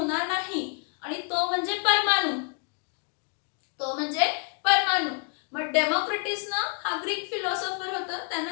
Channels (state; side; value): quieter; right; 38.1 dB